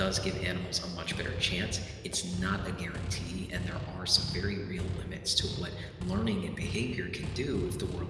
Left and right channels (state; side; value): identical; both; correlation 1.00